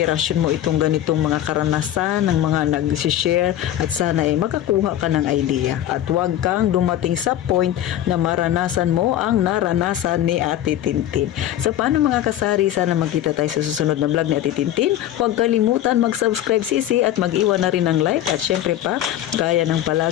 mo itong ganitong mga karanasan ng mga nag-share at sana makakuha ka ng idea at huwag kang dumating sa point na maranasan mo ang naranasan ni Ate Tintin. So paano mga kasari, sana magkita tayo sa susunod na vlog ni Ate Tintin. Huwag kalimutan mag-subscribe sisi at mag-iwan na rin ng like at syempre pa, gaya ng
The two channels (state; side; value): quieter; right; 12.2 dB